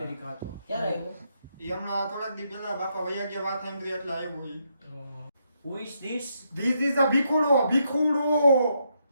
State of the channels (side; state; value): both; inverted; correlation -0.78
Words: હતો ક્યારે આવ્યો ઈ હમણાં થોડાક દી પહેલા બાપા વૈયા ગયા વાત સાંભળી એટલે આવ્યો ઈ Who is this? This is a ભીખુડો